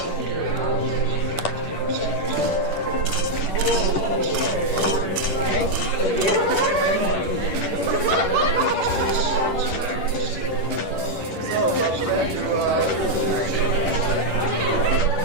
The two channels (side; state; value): right; late; 10 ms